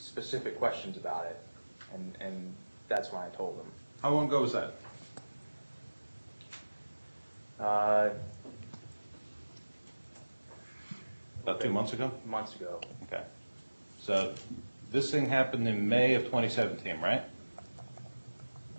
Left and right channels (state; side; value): inverted; both; correlation -1.00